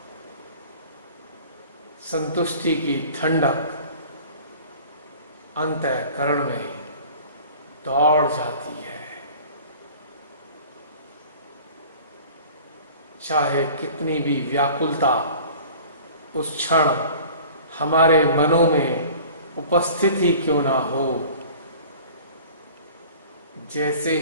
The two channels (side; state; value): both; inverted; correlation -0.45